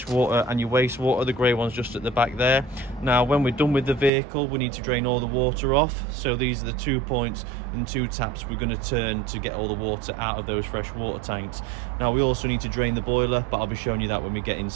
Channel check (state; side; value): drops out; left; at 4.1 s